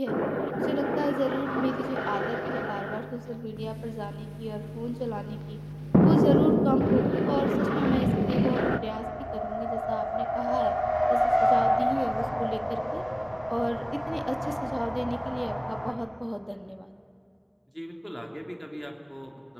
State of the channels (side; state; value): both; identical; correlation 1.00